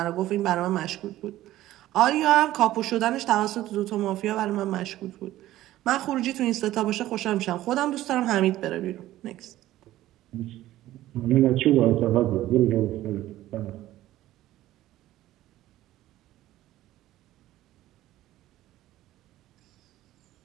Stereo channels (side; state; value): left; quieter; 14.8 dB